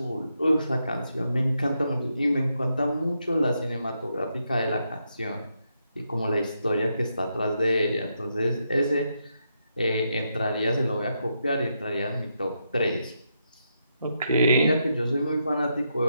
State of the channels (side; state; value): both; inverted; correlation -0.81